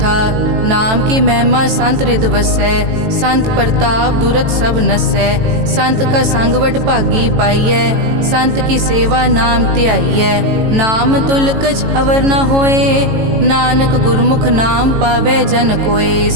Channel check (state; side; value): late; left; 18 ms